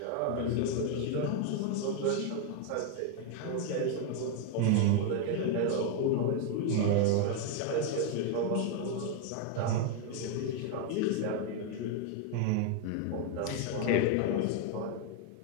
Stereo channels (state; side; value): different; both; correlation 0.01